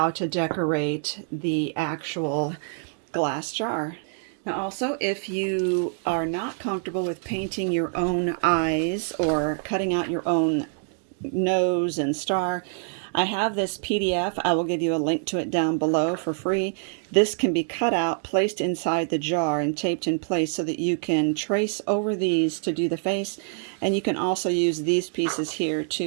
to decorate the actual glass jar. Now also, if you are not comfortable with painting your own eyes or cutting out your own nose and star, I have this PDF. I will give you a link to it down below for free. This can be cut out, placed inside the jar and taped in place so that you can trace over these to do the face, and you can also use these pieces here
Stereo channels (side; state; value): left; silent; 61 dB below the other